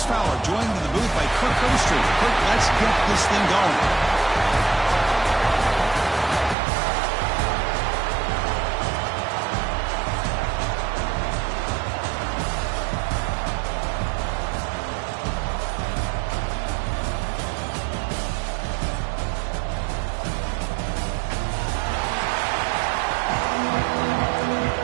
Fowler, joined in the booth by Kirk Overstreet. Kirk, let's get this thing going.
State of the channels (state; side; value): drops out; left; at 6.6 s